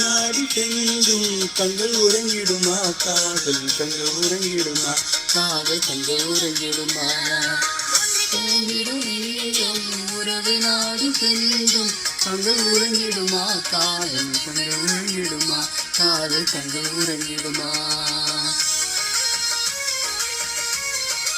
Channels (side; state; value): both; identical; correlation 1.00